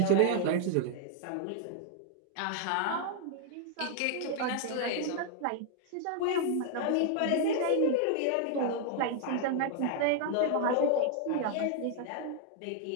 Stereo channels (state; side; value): different; both; correlation 0.00